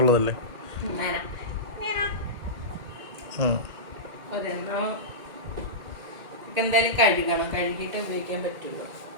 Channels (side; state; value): left; late; 1.8 ms